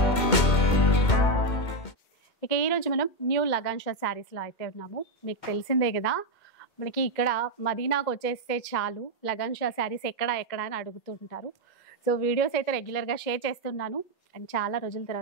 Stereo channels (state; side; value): late; right; 2.2 ms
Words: ఇక ఈరోజు మనం న్యూ లగాన్షా శారీస్లో అయితే ఉన్నాము. మీకు తెలిసిందే కదా, మనకి ఇక్కడ మదీనాకు వచ్చేస్తే చాలు లగాన్షా శారీస్ ఎక్కడ అని అడుగుతుంటారు. సో వీడియోస్ అయితే రెగ్యులర్గా షేర్ చేస్తున్నాను. అండ్ చాలా రోజుల